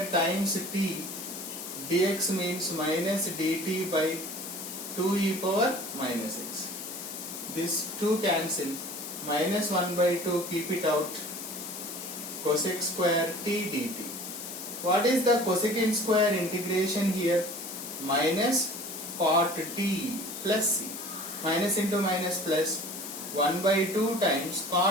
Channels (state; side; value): noise; left; hiss, 9 dB below the sound